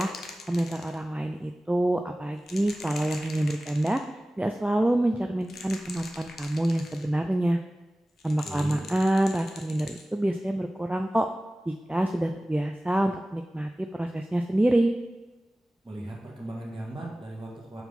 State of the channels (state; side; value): normal; both; correlation 0.97